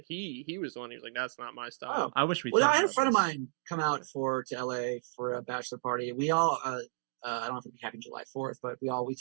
He was the one. He was like, "That's not my style." Oh. I wish we. Well, talked I had a about friend of this. mine come out to LA for a bachelor party. We all, I don't know if it'd be happening July 4th, but we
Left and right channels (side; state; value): left; silent; digital silence